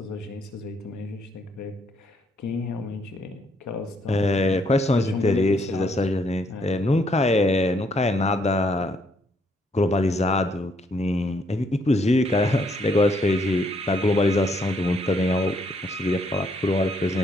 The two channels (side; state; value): both; normal; correlation 0.71